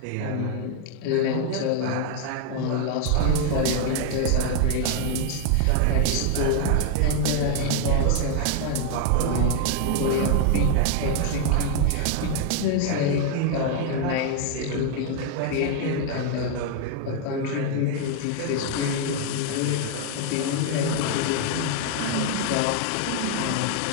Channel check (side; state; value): both; different; correlation 0.00